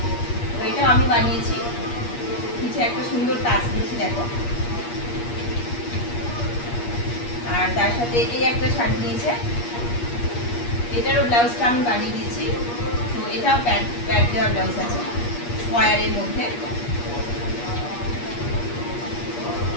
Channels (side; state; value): right; late; 8.4 ms